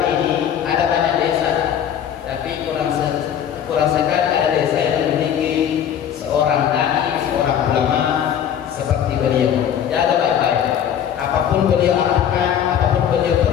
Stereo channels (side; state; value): right; quieter; 9.3 dB